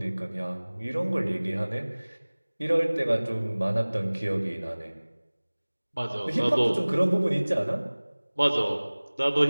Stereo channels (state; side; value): inverted; both; correlation -1.00